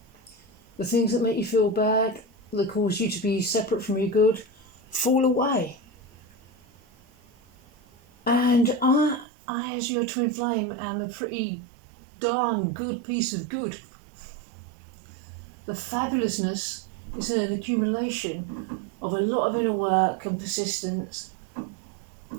the things that make you feel bad, that cause you to be separate from your good, fall away. And I as your twin flame, am a pretty darn good piece of good. The fabulousness is an accumulation of a lot of inner work and persistence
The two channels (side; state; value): left; drops out; at 9.2 s